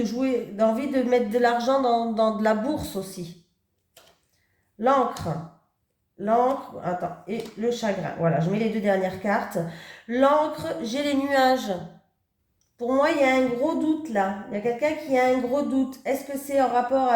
jouer, a envie de mettre de l'argent dans de la bourse aussi. L'encre. L'encre, attends, et le chagrin. Voilà, je mets les deux dernières cartes. L'encre, j'ai les nuages. Pour moi, il y a un gros doute là. Il y a quelqu'un qui a un gros doute. Est-ce que c'est en rapport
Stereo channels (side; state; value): both; identical; correlation 1.00